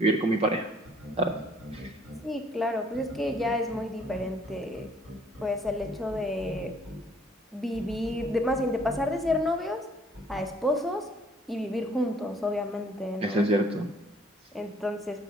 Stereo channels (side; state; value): both; normal; correlation 0.60